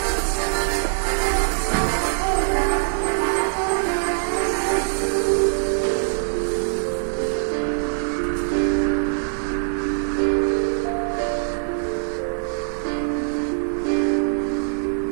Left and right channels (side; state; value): left; silent; 64 dB below the other